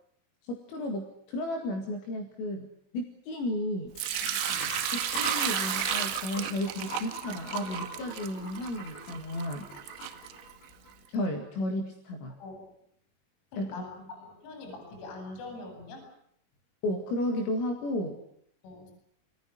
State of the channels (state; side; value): late; right; 21 ms